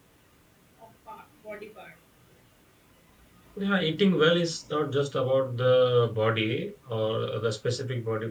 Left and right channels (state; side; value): identical; both; correlation 1.00